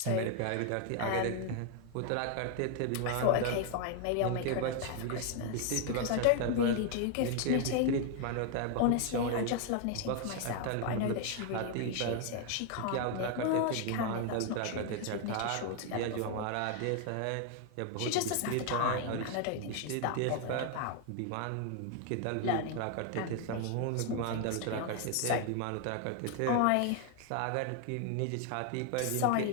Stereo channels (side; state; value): both; different; correlation 0.00